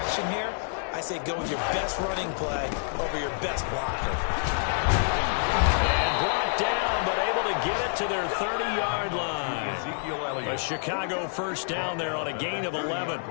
here. I say go with your best running play over your best blocker. And brought down, but able to get it to their 30-yard line. Ezekiel Elliott. A Chicago first down there on a gain of 11.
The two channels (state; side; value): silent; right; 60 dB below the other